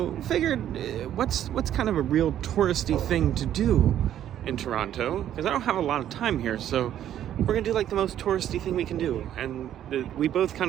figured, what's kind of a real touristy thing to do in Toronto? Because I don't have a lot of time here, so we're gonna do like the most touristy thing we can do. And we both kind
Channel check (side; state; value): left; quieter; 11.1 dB